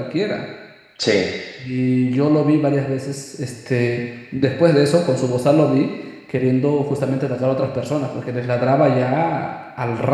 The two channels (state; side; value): identical; both; correlation 1.00